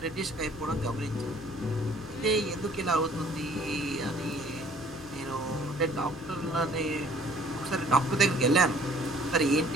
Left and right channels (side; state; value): right; noise; rumble, 24 dB below the sound